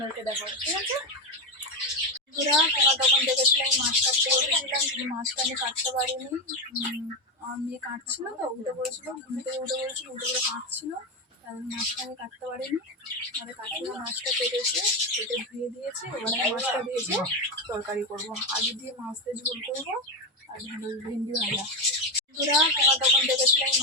দেখাবো, ঠিক আছে? বন্ধুরা, তোমার তখন দেখেছিলাম মাছ কাটতে বলেছিলাম, কিন্তু মাছটা আমি কাটতে পারিনি। আমার মেয়ে কাটছিল তো, উঠে পড়েছিল, ঘুম থেকে উঠে পড়েছিল, উঠে পড়ে কাটছিল, তাহলে মাছটা আমি কাটতে পারিনি। আমাদের কাকিমা মাছটা কেটে ধুয়ে দিয়েছে। এবারে মাছটা দিয়েছে তরকারি করবো, আলু দিয়ে মাছ দিয়ে ঝোল করবো, আর ভেন্ডি ভাজা। বন্ধুরা, তোমার তখন দেখেছিলাম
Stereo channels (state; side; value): normal; both; correlation 0.10